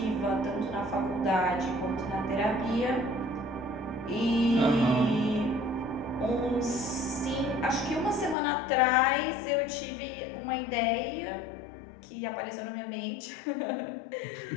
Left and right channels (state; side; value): drops out; right; at 8.3 s